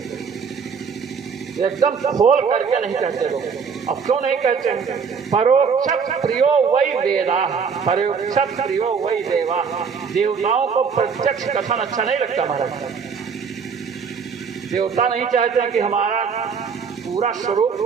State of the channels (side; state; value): left; quieter; 6.0 dB